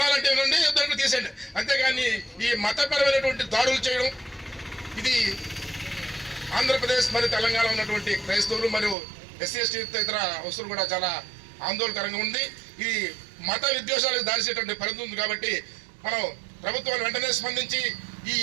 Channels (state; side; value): drops out; left; at 9.0 s